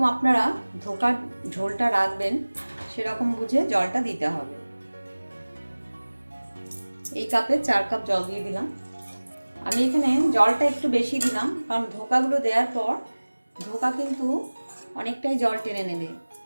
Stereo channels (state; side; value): inverted; both; correlation -1.00